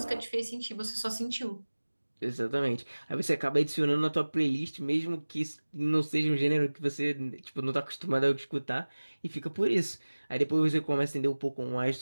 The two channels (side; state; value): both; inverted; correlation -1.00